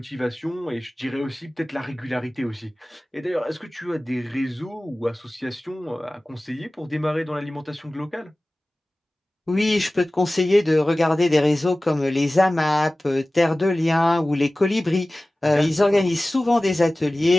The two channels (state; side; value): normal; both; correlation 0.97